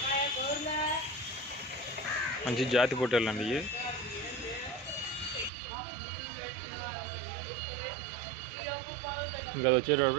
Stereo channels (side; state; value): left; drops out; at 5.5 s